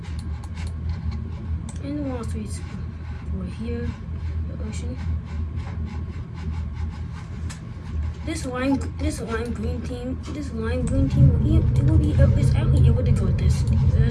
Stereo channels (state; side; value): identical; both; correlation 1.00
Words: And the Wall Street's for here, the ocean. This lime green team is actually able to go this